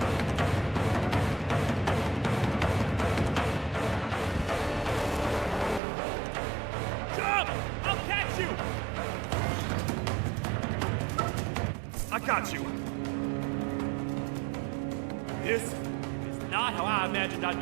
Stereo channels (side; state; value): left; drops out; at 5.8 s